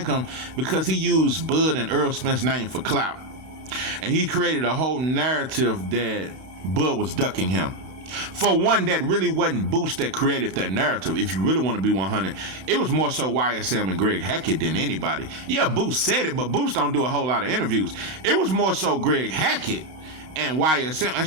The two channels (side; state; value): left; late; 32 ms